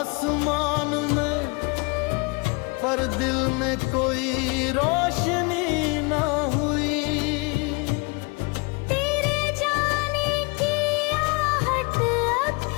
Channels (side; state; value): right; quieter; 29.8 dB